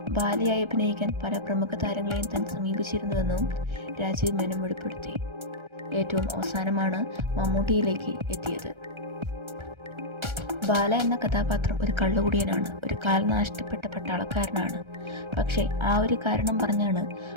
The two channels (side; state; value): left; late; 1.3 ms